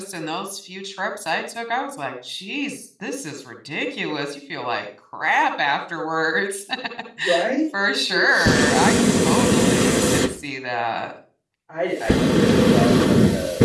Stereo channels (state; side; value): identical; both; correlation 1.00